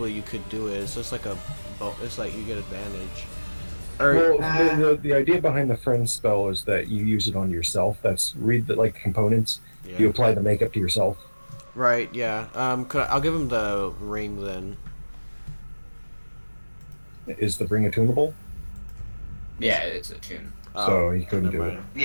do it. It's just like it's like you get advantage. Well, the idea behind the friend spell is that you use it on yourself. That's read the components. Yeah. You apply the makeup to yourself. Right. Yeah. I'll give him the ring then. Is the ring attunable? Yeah, it's a tune. So he couldn't do it.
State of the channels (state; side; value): inverted; both; correlation -1.00